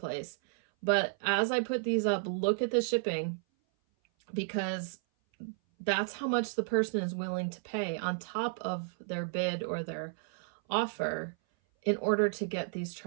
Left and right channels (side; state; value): left; silent; 56 dB below the other